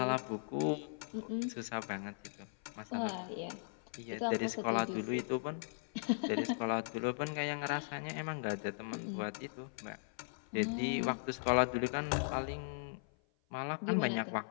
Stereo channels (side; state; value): right; silent; 52 dB below the other